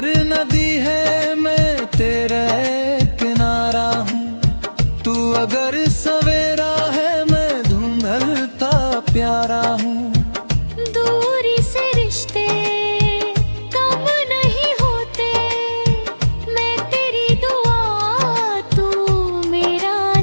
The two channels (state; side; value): inverted; both; correlation -1.00